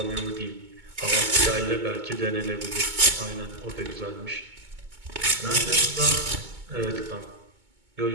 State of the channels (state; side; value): late; left; 2.2 ms